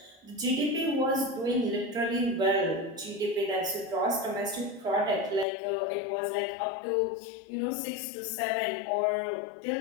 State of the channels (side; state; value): right; drops out; at 5.5 s